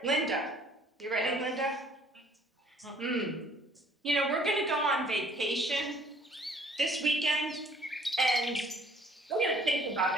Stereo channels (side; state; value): both; normal; correlation 0.58